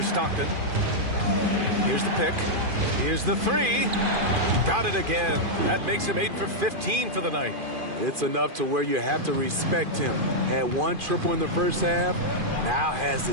Stockton. Here's the pick. Here's the three. Got it again. That makes him 8 for 15 for the night. It's enough to where you have to respect him. Had one triple in the first half, now has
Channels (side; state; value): left; late; 2.5 ms